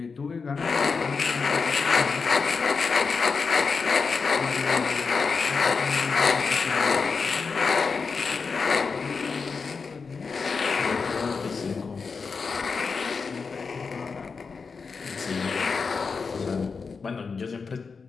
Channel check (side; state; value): right; quieter; 5.0 dB